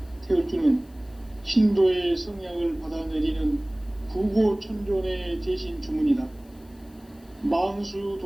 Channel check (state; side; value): noise; left; hiss, 30 dB below the sound